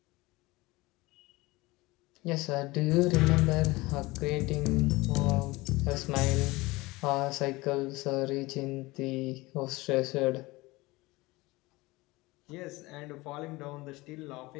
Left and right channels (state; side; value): quieter; right; 21.6 dB